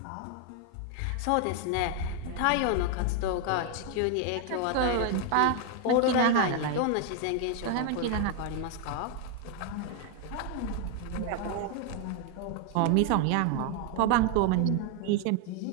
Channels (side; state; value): both; different; correlation 0.01